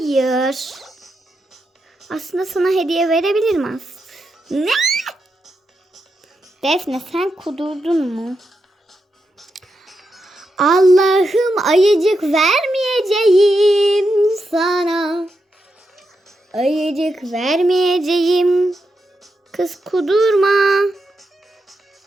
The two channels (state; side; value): normal; both; correlation 0.85